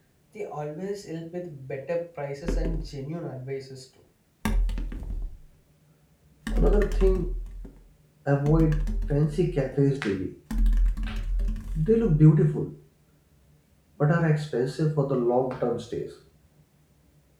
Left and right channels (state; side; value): identical; both; correlation 1.00